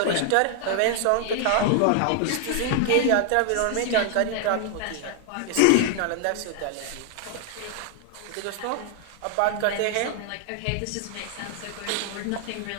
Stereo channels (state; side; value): different; both; correlation 0.00